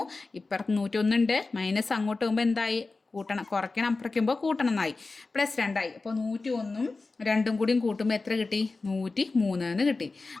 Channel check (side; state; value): right; quieter; 3.7 dB